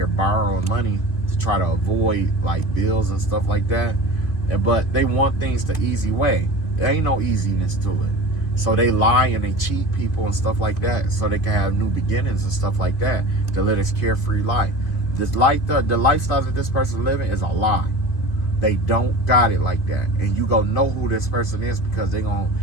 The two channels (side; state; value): right; late; 2.5 ms